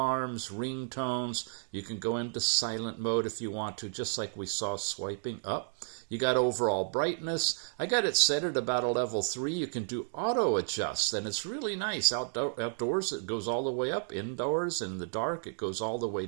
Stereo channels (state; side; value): silent; left; digital silence